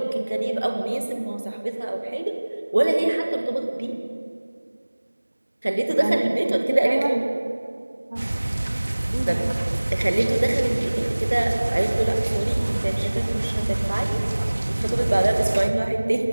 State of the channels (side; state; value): both; inverted; correlation -1.00